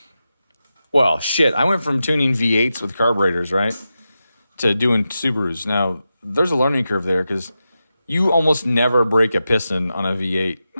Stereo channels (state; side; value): inverted; both; correlation -0.90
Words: Well, shit, I went from tuning V8s with carburetors, right, to doing Subarus. Now, there's a learning curve there because you almost never break a piston on a V8.